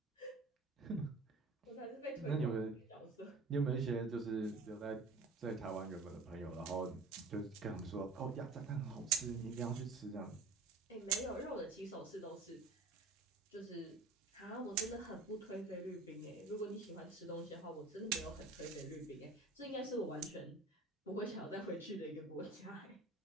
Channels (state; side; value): quieter; left; 3.7 dB